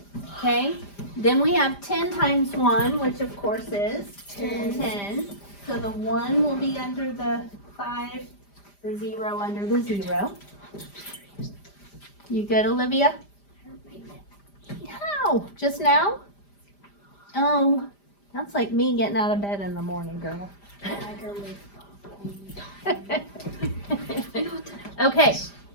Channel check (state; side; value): late; right; 5.0 ms